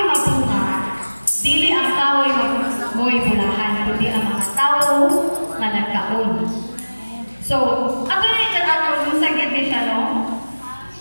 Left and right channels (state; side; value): inverted; both; correlation -1.00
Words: mabunga, dili ang kahoy mo'y bulahan, kundi ang mga tao na nagkaon. So, ato na yung ato, yung sagit din siya, no?